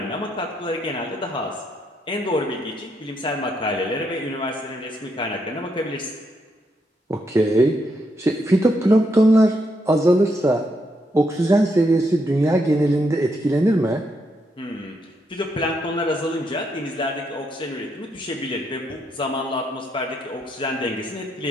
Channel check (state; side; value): normal; both; correlation 0.78